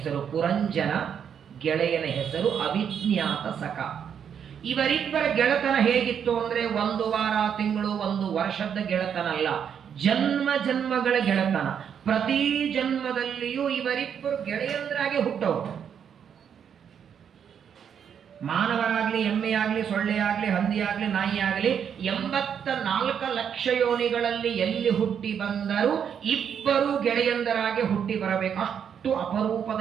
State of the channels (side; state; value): left; quieter; 8.0 dB